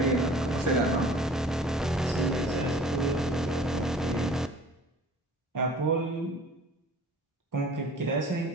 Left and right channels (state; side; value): normal; both; correlation 0.47